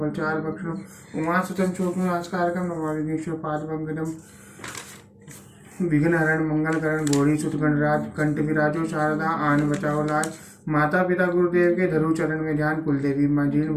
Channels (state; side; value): identical; both; correlation 1.00